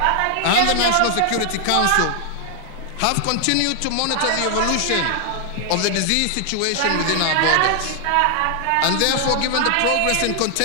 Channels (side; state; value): both; different; correlation 0.00